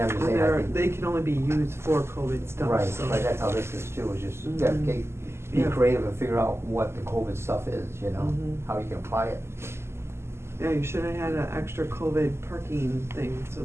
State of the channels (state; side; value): late; left; 0.12 ms